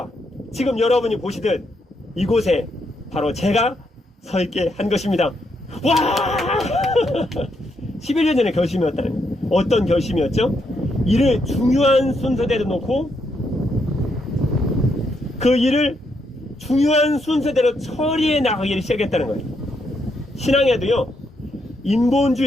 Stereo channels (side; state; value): both; normal; correlation 0.78